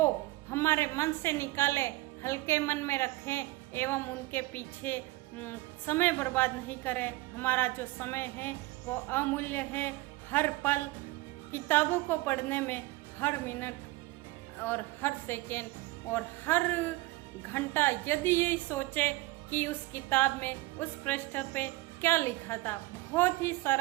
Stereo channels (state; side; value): quieter; left; 20.1 dB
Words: हमारे मन से निकालें, हल्के मन में रखें एवं उनके पीछे समय बर्बाद नहीं करें। हमारा जो समय है वो अमूल्य है। हर पल किताबों को पढ़ने में, हर मिनट और हर सेकेंड और हर घंटा यदि यही सोचे कि उस किताब में उस पृष्ठ पे क्या लिखा था। बहुत ही